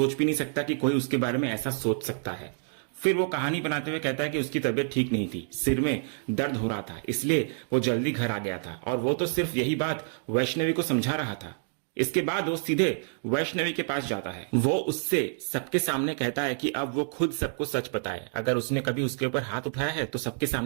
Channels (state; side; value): silent; left; digital silence